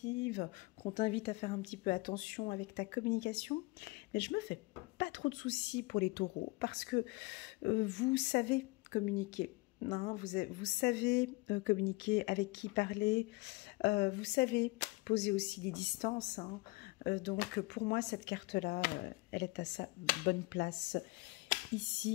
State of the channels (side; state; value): right; quieter; 24.2 dB